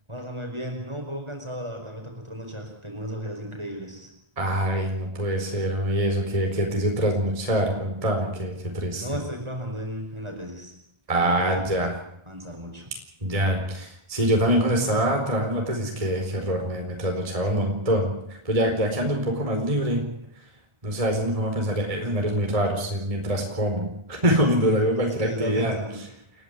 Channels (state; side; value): late; left; 1.7 ms